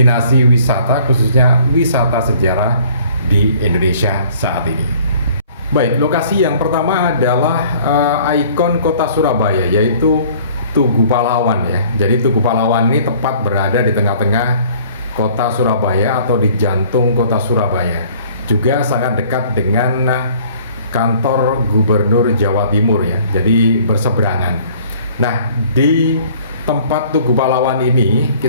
wisata, khususnya wisata sejarah di Indonesia saat ini. Baik, lokasi yang pertama adalah ikon kota Surabaya, yaitu Tugu Pahlawan ya. Jadi Tugu Pahlawan ini tepat berada di tengah-tengah kota Surabaya atau di jantung kota Surabaya. Juga sangat dekat dengan kantor Gubernur Jawa Timur ya. Jadi berseberangan. Nah, di tempat Tugu Pahlawan ini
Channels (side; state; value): both; inverted; correlation -0.54